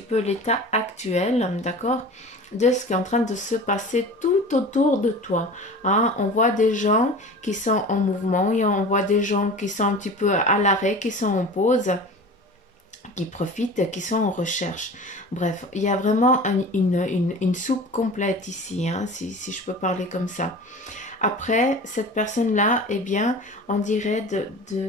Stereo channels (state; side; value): normal; both; correlation 0.37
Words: peu l'état actuel, d'accord? De ce qui est en train de se passer tout autour de toi. Hein. On voit des gens qui sont en mouvement et on voit des gens qui sont un petit peu à l'arrêt, qui sont en pause, qui profitent, qui sont en recherche. Bref, il y a vraiment une soupe complète ici, hein, si je peux parler comme ça. Après, cette personne-là, eh bien, on dirait